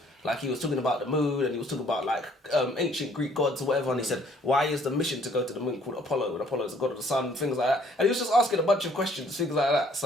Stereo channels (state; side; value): normal; both; correlation 0.61